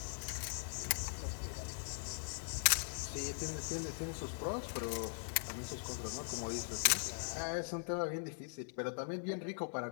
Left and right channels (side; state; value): right; silent; digital silence